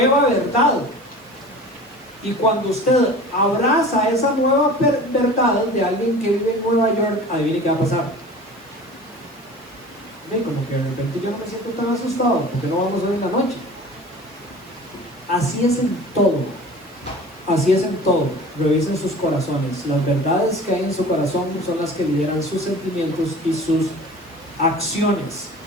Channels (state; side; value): noise; right; hiss, 30 dB below the sound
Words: verdad. Y cuando usted abraza esa nueva verdad de alguien que vive en Nueva York, adivine qué va a pasar. Ven, como que de repente yo no me siento tan asustado, porque no vamos a ver en la noche. Así es en todo. Así es en todo. Revisen sus corazones. Las verdades que hay en su corazón son las que lideran sus sentimientos y sus acciones.